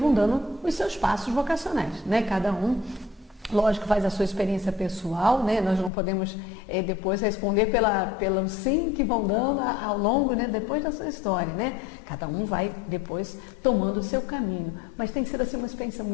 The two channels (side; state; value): right; drops out; at 5.9 s